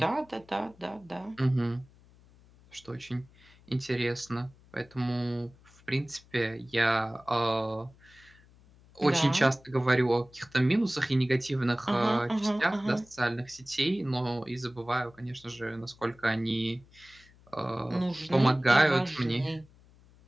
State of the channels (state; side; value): noise; left; hum, 27 dB below the sound